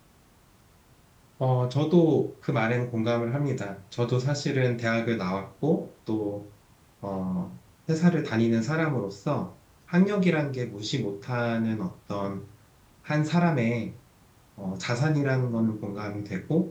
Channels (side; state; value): both; identical; correlation 1.00